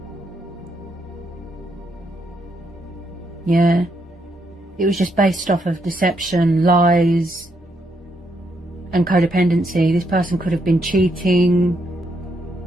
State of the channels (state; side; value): normal; both; correlation 0.77